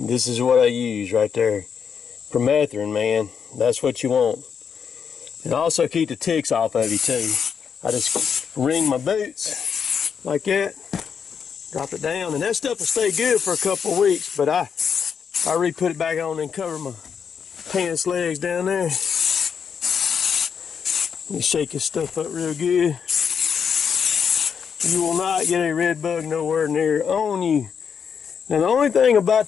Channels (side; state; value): right; quieter; 6.9 dB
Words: is what I use right there. Permethrin, man. That's what you want. And also keep the ticks off of you too. I just wring my boots like that. Drop it down, and that stuff will stay good for a couple of weeks, but I re-put it back on and cover my pants legs down there. You shake this stuff up real good. You will not get a red bug nowhere near on you. Now the only thing